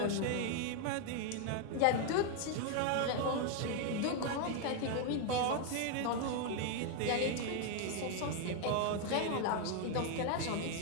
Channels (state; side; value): different; both; correlation 0.01